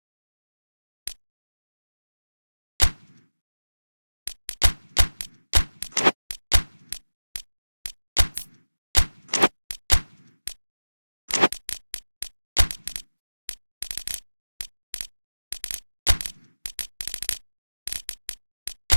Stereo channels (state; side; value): inverted; both; correlation -1.00